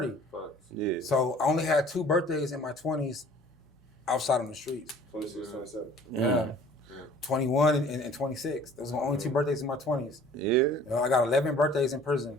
Yeah. So I only had 2 birthdays in my 20s outside on the streets. 26, 27. Yeah. 21 and 26. Those were my only 2 birthdays in my 20s. Yeah. You know, I got 11 birthdays in prison.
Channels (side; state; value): both; normal; correlation 0.51